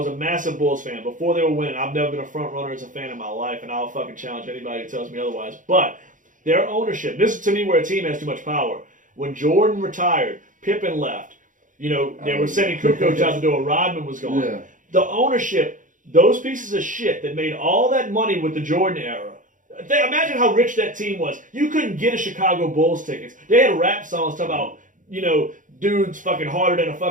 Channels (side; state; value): left; late; 0.38 ms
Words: a massive Bulls fan. Before they were winning, I've never been a front runner as a fan in my life, and I'll fucking challenge anybody who tells me otherwise. But their ownership, this is to me where a team has too much power. When Jordan retired, Pippen left. They were sending Kukoc out the door. Rodman was gone. Yeah. The ownership, those pieces of shit that made all that money with the Jordan era. Imagine how rich that team was. You couldn't get a Chicago Bulls tickets. They had rap songs talking about, dudes fucking harder than a